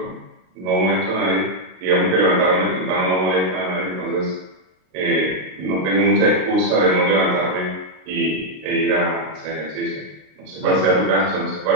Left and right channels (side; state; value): left; late; 32 ms